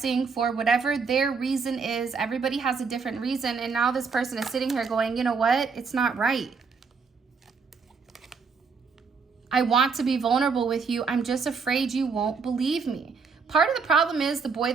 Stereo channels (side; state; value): left; quieter; 5.2 dB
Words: for whatever their reason is. Everybody has a different reason. And now this person is sitting here going, you know what? It's not right. I want to be vulnerable with you. I'm just afraid you won't believe me. Part of the problem is the boy